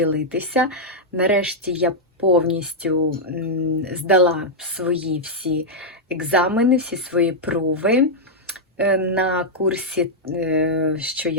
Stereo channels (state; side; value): normal; both; correlation -0.04